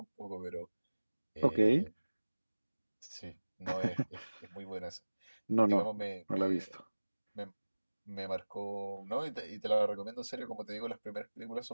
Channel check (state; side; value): inverted; both; correlation -1.00